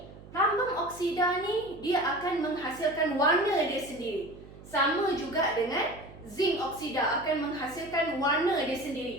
Plumbum oksida ni dia akan menghasilkan warna dia sendiri. Sama juga dengan zinc oksida akan menghasilkan warna dia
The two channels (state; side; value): noise; right; hum, 19 dB below the sound